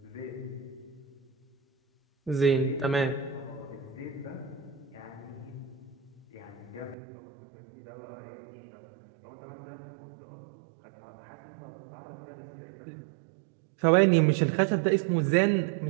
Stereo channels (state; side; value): drops out; left; at 7.0 s